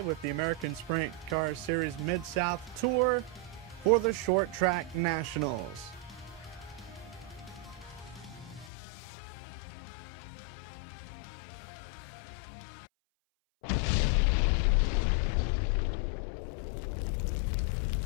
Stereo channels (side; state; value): right; drops out; at 8.7 s